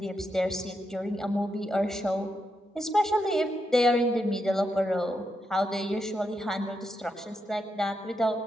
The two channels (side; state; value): both; normal; correlation 0.83